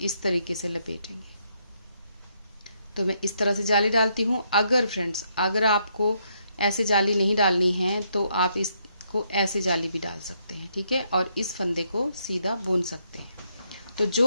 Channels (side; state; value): both; inverted; correlation -0.75